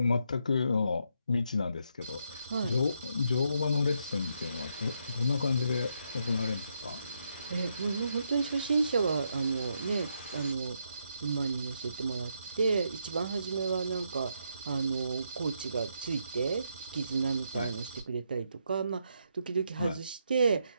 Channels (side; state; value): both; inverted; correlation -0.78